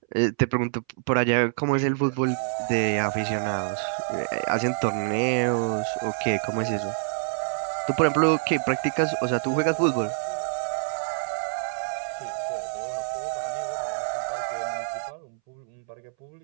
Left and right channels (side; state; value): left; silent; 60 dB below the other